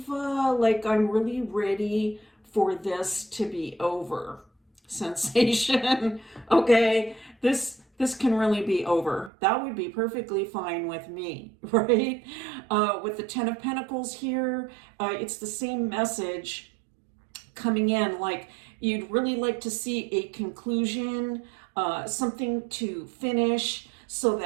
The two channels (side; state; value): left; drops out; at 9.3 s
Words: like, I'm really ready for this to be over sensation. Okay, this can really be over. That would be perfectly fine with me, right? With the 10 of Pentacles here, it's the same message coming in, like you'd really like to see a conclusion, something to finish so